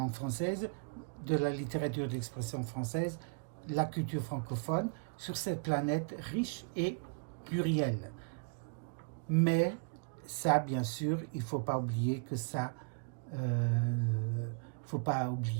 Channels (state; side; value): quieter; left; 36.5 dB